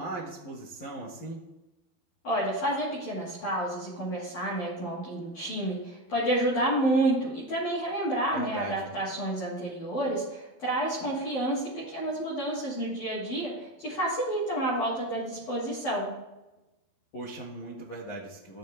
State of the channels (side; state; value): right; late; 12 ms